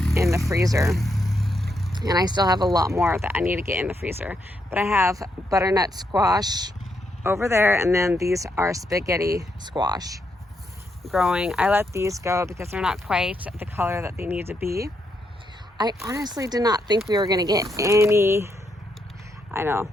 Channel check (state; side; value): normal; both; correlation 0.79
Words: in the freezer, and I still have a lot more that I need to get in the freezer. But I have butternut squash over there, and then these are spaghetti squash growing. I let these go because they're not quite the color that they need to be. I honestly did not think we were gonna get any, I know,